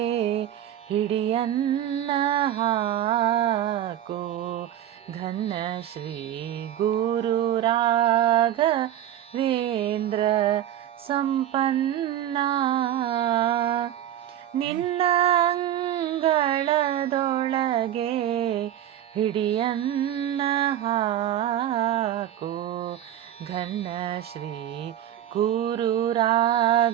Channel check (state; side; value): quieter; left; 11.5 dB